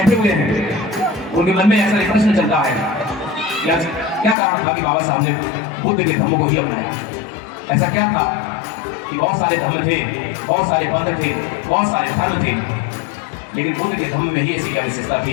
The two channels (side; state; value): right; drops out; at 4.4 s